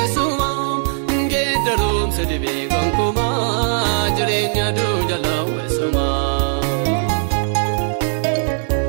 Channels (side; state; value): left; silent; 65 dB below the other